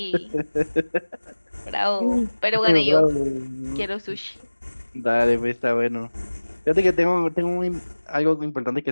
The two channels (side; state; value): both; inverted; correlation -1.00